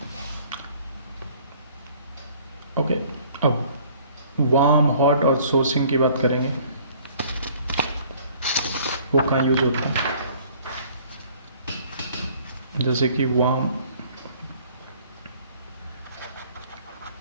Okay, अब वार्म, हॉट और सोर्सिंग की बात करेंगे, वो कहाँ यूज होता है? जैसे कि वार्म,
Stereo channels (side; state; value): both; inverted; correlation -0.55